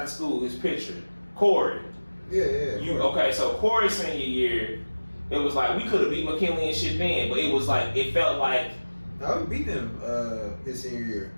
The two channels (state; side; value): inverted; both; correlation -1.00